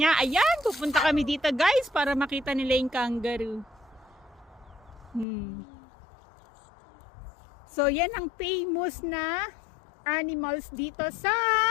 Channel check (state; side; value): drops out; right; at 5.2 s